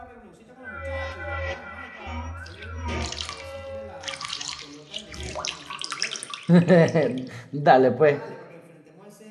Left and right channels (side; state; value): both; identical; correlation 1.00